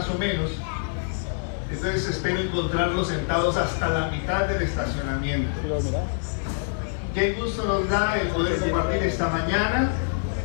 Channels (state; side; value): silent; right; 61 dB below the other